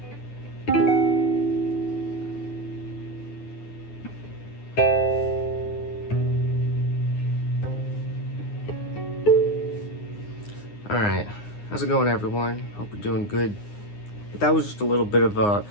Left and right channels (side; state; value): right; late; 9.7 ms